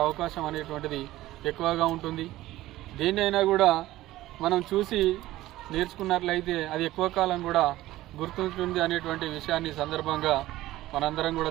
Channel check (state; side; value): quieter; left; 16.0 dB